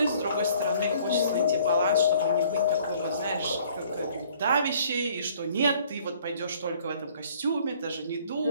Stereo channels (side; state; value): both; inverted; correlation -0.58